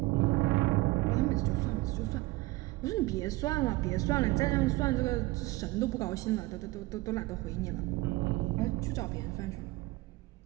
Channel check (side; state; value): left; quieter; 20.6 dB